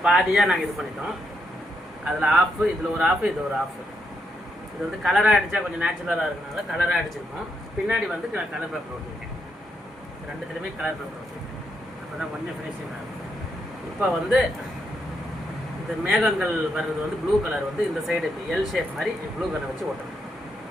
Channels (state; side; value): normal; both; correlation 0.80